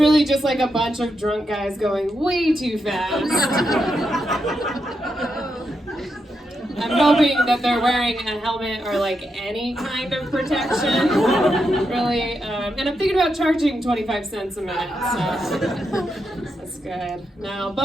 just like a bunch of drunk guys going way too fast. I'm hoping that they're wearing a helmet or like any kind of protection, really. And I'm thinking about charging 25 cents a minute, so that's good. Now,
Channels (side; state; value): both; normal; correlation 0.84